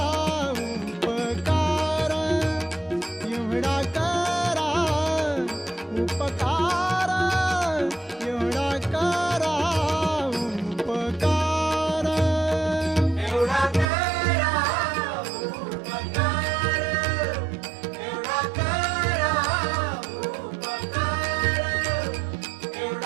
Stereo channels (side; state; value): left; drops out; at 13.9 s